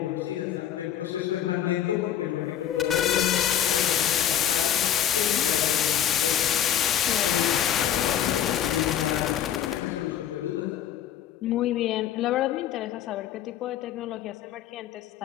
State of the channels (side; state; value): right; quieter; 10.2 dB